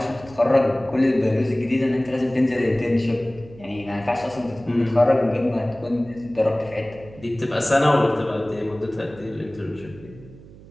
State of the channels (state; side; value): noise; right; hum, 20 dB below the sound